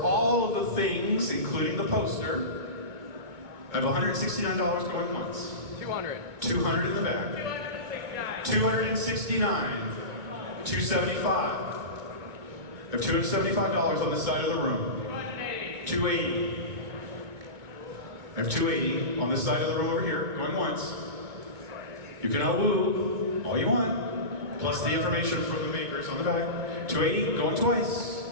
all of the things, including the poster. I have $169 going once. 200 in the back. 269. 275. I have $275 on this side of the room. 280. I have 280 on this side of the room over here, going once. You can awoo all you want, plus the information from the makers on the back. 280, going twice.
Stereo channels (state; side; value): late; left; 2.2 ms